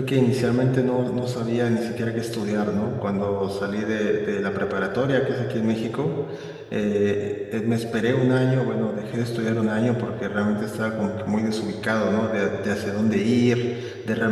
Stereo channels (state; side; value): identical; both; correlation 1.00